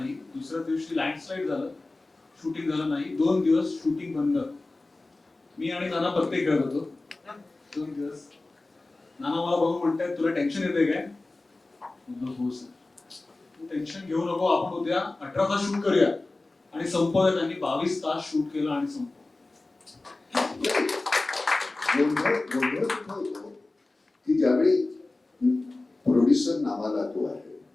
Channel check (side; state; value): right; quieter; 3.1 dB